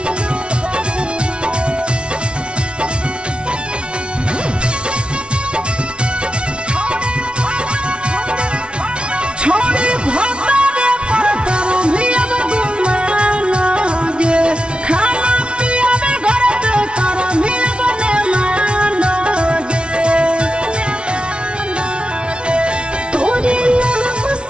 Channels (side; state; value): left; late; 0.058 ms